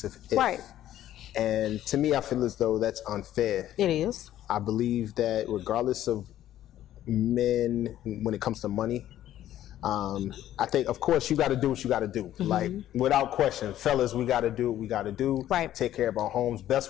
if. And to me, I feel as though that's unfair. It is. I believe that regardless of men, when it comes to money, I think, of course, you got to do what you got to do. Like, without question, fellas, we got to do what we got to do. Take care of our homes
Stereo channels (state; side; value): quieter; right; 12.5 dB